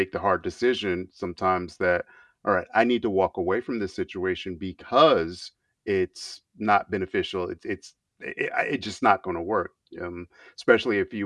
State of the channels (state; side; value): identical; both; correlation 1.00